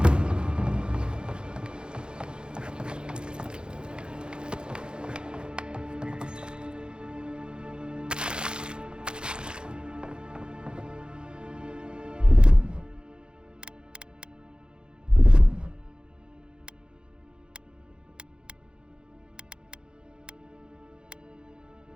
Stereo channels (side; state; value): left; late; 0.049 ms